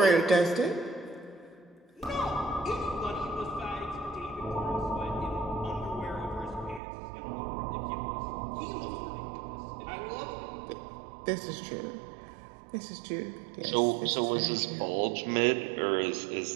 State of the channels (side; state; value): left; drops out; at 6.8 s